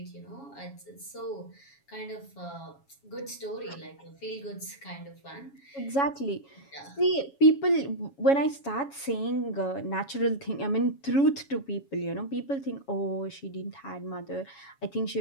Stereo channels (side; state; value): right; late; 7.2 ms